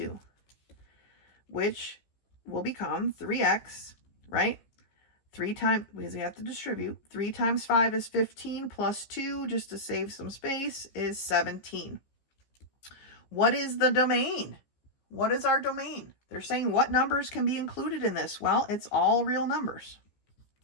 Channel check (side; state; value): right; late; 15 ms